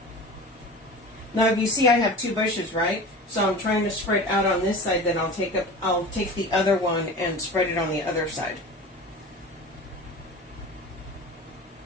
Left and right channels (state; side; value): normal; both; correlation 0.35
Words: Now if you see I have two bushes, right? So I'm trying to spread out on this side, then I'll take the other one and spread it on the other side.